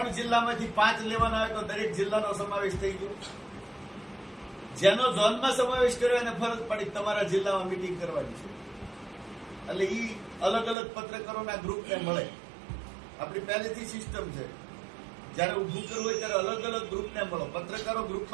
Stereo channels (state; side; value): drops out; left; at 10.8 s